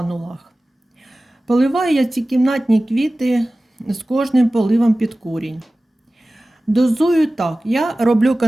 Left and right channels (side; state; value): both; normal; correlation 0.97